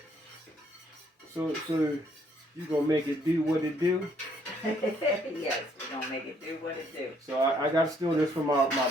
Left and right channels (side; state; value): both; normal; correlation 0.67